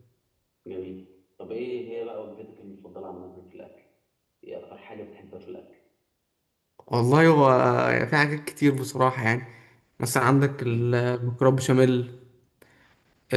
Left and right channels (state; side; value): identical; both; correlation 1.00